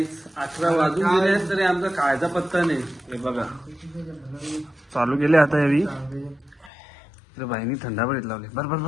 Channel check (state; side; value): drops out; right; at 6.7 s